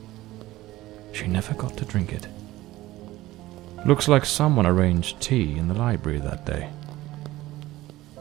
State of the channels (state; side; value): quieter; left; 17.0 dB